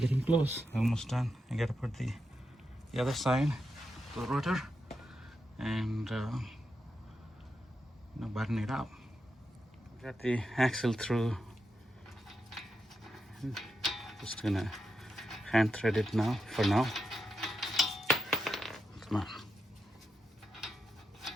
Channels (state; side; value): normal; both; correlation 0.85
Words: close, almost done. I gotta put the other side, the rotor, and button it up. Got the axle through. Just gonna hand thread it now, for now. Come on.